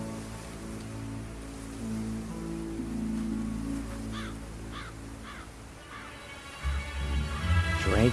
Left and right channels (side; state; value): both; identical; correlation 1.00